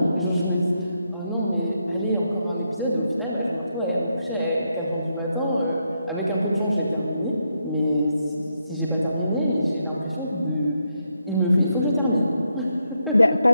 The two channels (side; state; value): both; inverted; correlation -0.80